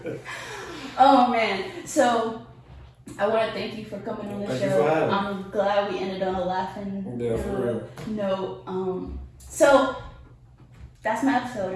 Oh, man. So, I want to thank you for coming on the Thank show. You for having me. I'm glad we ended on a laughing note. So, that's my episode.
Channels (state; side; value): identical; both; correlation 1.00